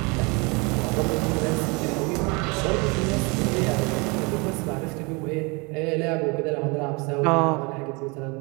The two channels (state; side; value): quieter; left; 29.1 dB